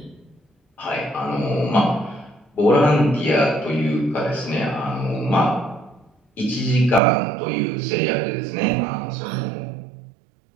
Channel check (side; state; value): left; drops out; at 7.0 s